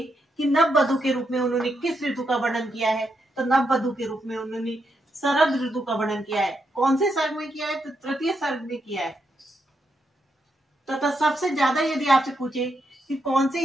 कि नववधु के रूप में उन्होंने किस ऋतु का वर्णन किया है, तो नववधु के रूप में उन्होंने शरद ऋतु का वर्णन किया है। कौन से सर्ग में किया है? तो तृतीय सर्ग में किया है। तथा सबसे ज्यादा यदि आपसे पूछे कि कौन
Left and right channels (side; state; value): both; normal; correlation 0.81